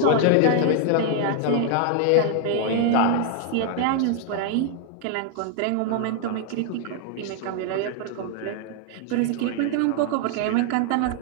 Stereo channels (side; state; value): both; different; correlation 0.00